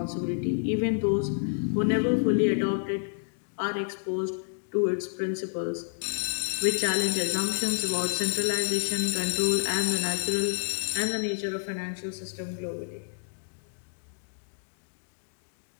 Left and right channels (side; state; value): right; silent; digital silence